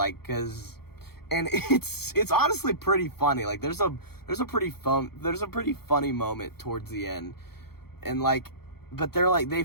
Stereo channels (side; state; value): right; late; 0.95 ms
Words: cause, and it's honestly pretty funny. Like there's a pretty funny moment towards the end, and like, but they're like, they